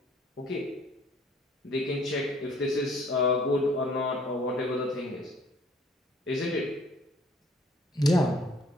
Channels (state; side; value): normal; both; correlation 0.57